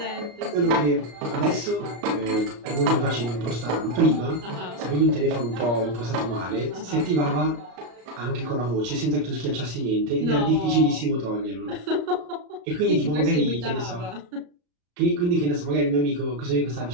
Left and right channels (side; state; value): left; late; 34 ms